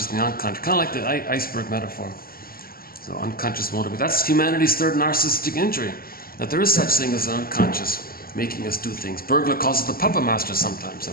and the unconscious, kind of like the iceberg metaphor. So unconscious motive. That's humanity's third narcissistic injury. That there is such thing as an unconscious making us do things. Burglar calls it the puppet master sometimes,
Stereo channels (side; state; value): right; late; 0.43 ms